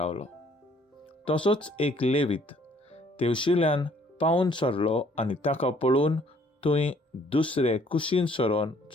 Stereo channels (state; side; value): normal; both; correlation 0.62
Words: तसोच एक लेवीत तेवशिल्यान पावून सरलो आनी ताका पळोवन थंय दुसरे कुशीन सरोन